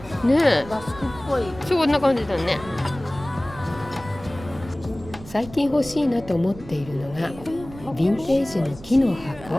ねえ、バスクっぽい。そんな感じだね。最近欲しいなと思っているのがヴィンテージの木の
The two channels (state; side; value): noise; right; rumble, 17 dB below the sound